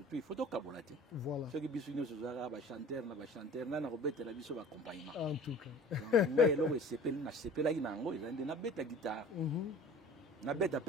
puis il faut to kabolati. Voilà. Ce qui biso nyonso zaka ba chanteur na robeta la biso ba accompagnement. En tout cas. Mais là c'est payé na sepela inango ils na beta guitare. Na beta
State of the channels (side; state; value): both; normal; correlation 0.44